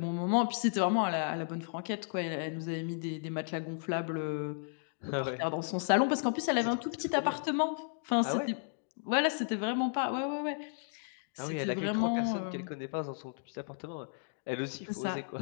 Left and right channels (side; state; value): right; silent; digital silence